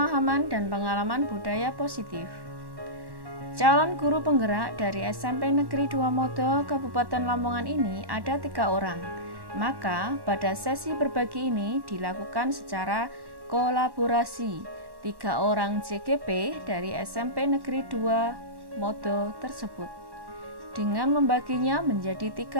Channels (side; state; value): left; late; 1.1 ms